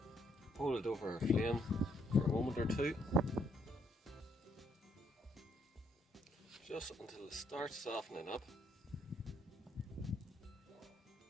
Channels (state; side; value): normal; both; correlation 0.71